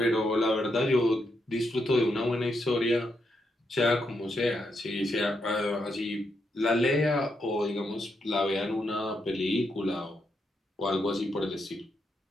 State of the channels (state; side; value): normal; both; correlation 0.81